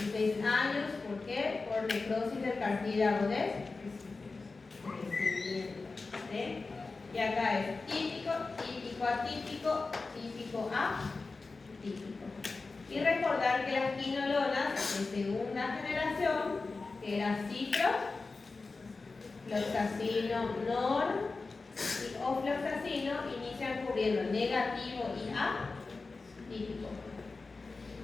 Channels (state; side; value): quieter; right; 3.9 dB